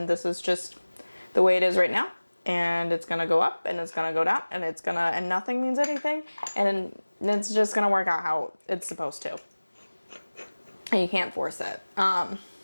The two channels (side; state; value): both; inverted; correlation -1.00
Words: this is just the way it is right now, and it's gonna go up and it's gonna go down, and it's gonna, and nothing means anything, and it's just gonna work out how it's supposed to. And you can't force it.